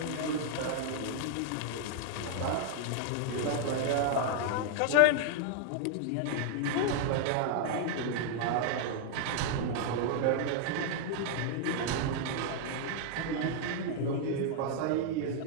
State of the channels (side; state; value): both; different; correlation 0.00